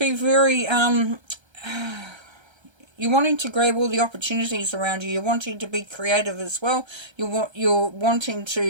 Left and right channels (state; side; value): late; left; 1.3 ms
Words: very, you're wanting to grab all the opportunities around you. You're wanting to be creative as well. You're wanting